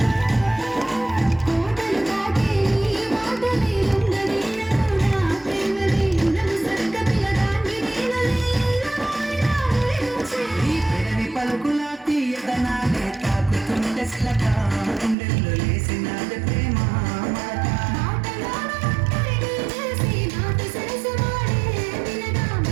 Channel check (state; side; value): drops out; left; at 15.2 s